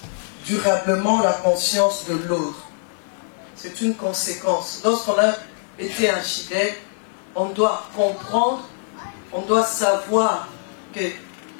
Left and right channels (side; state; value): right; silent; digital silence